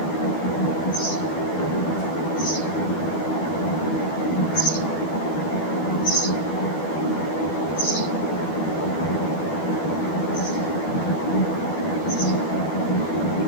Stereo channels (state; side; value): late; right; 12 ms